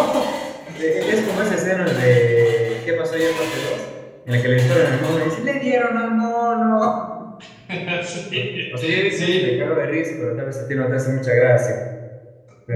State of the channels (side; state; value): both; identical; correlation 1.00